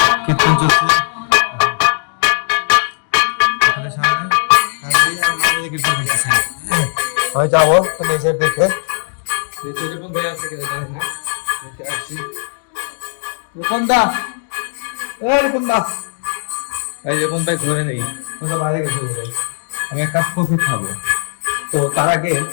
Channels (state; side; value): silent; right; 68 dB below the other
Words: কীর্তন চলছে। আমি যাবো তো নিজের দেখে রূপন ভাই আছে কিনা জানি না, দেখে আসি। রূপন দা, রূপন দা, এই রূপন ভাই ঘরে নেই, বাইরে গেছে। আমি এক কাপ কফি খাবো, তো তার আগে